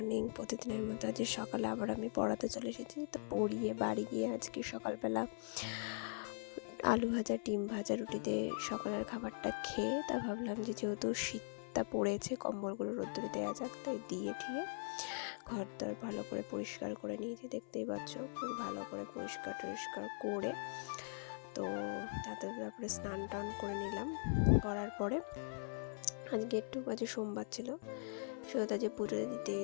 প্রতিদিনের মতো আজ সকালে আবার আমি পড়াতে চলে এসেছি। তো পড়িয়ে বাড়ি গিয়ে আজকে সকালবেলা আলু ভাজা, ডিম ভাজা, রুটি দিয়ে সকালের খাবারটা খেয়ে তা ভাবলাম যে যেহেতু শীতটা পড়েছে, কম্বলগুলো রোদ্দুরে দেওয়া যাক, তাই দিয়ে ঠিয়ে ঘর দর ভালো করে পরিষ্কার করে নিয়েছি। দেখতেই পাচ্ছ খুব ভালো করে পরিষ্কার টরিষ্কার করে তো তারপরে স্নান টান করে নিলাম। করার পরে আজকে একটু বাজে সোমবার ছিল, সেটা যে পুজো দিতে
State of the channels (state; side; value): silent; right; 50 dB below the other